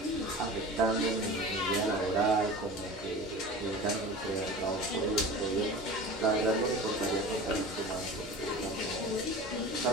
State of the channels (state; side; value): normal; both; correlation 0.36